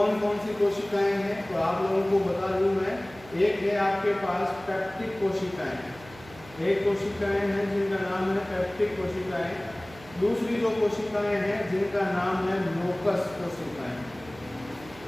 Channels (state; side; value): noise; right; hum, 20 dB below the sound